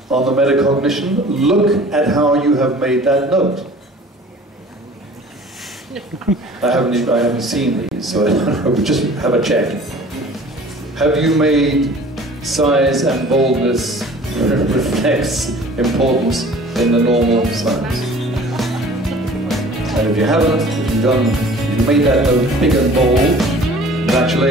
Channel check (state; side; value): normal; both; correlation 0.47